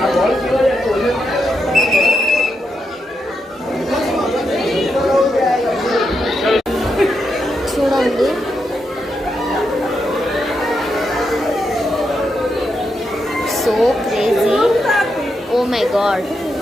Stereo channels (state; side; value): normal; both; correlation 0.83